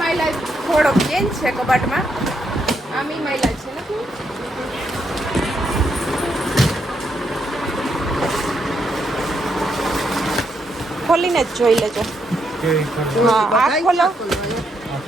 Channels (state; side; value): normal; both; correlation 0.78